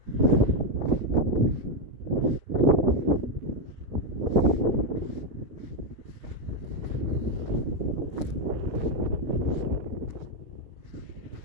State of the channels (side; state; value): left; late; 6.0 ms